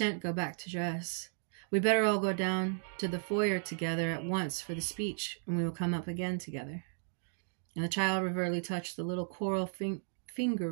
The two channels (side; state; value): left; silent; 55 dB below the other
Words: go back to dress. We better all go down to the foyer together at once for the speech, and we will come up again together. And the child reverently touched the little coral finger